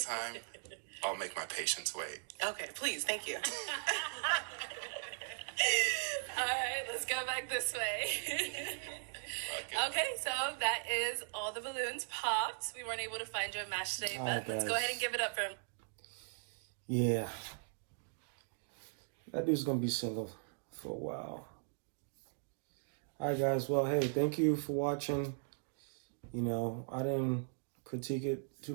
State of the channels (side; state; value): left; silent; digital silence